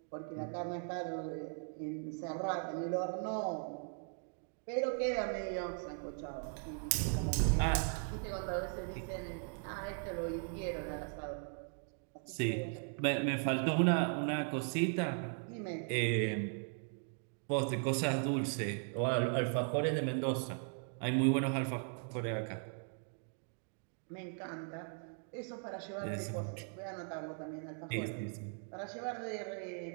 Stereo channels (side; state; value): left; silent; 52 dB below the other